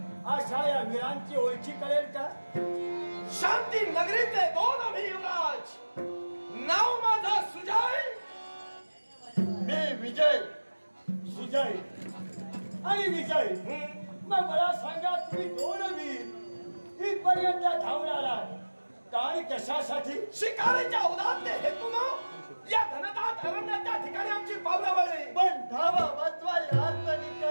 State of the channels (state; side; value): inverted; both; correlation -1.00